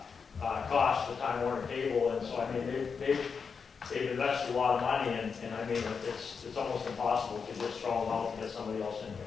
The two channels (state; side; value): quieter; right; 5.7 dB